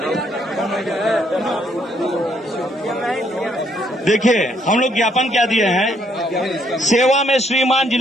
देखिए, हम लोग ज्ञापन क्या दिए हैं। सेवा में श्रीमान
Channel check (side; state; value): both; normal; correlation 0.69